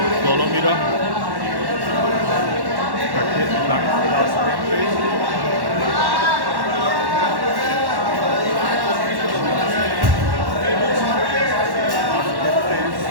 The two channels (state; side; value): late; left; 1.1 ms